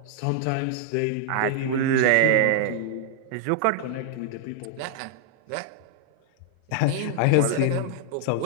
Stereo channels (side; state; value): both; different; correlation 0.00